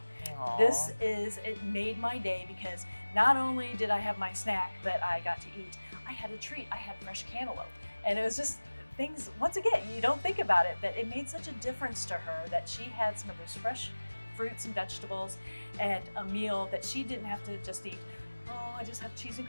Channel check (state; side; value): inverted; both; correlation -1.00